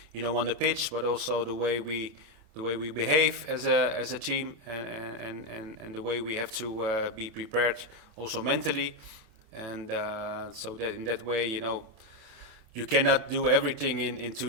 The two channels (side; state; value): left; late; 27 ms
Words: you know, on the pitch, but also the way we behave as a team, and the way we have to be prepared also mentally, and so that in that way, you know, you cannot do everything in 2